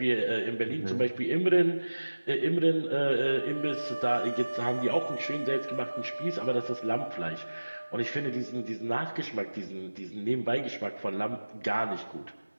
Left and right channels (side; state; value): both; inverted; correlation -1.00